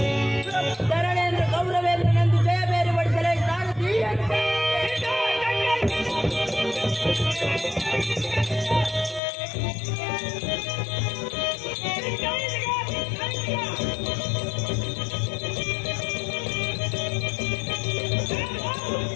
ಧರಣೇಂದ್ರ ಗೌರವೇಂದ್ರನೆಂದು ಜಯ ಬೇರೆ ಬಡಿಸಲೇ ಸಾರಥಿ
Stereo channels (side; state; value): right; drops out; at 9.2 s